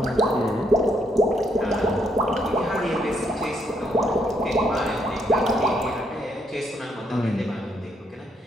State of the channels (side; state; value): both; normal; correlation 0.74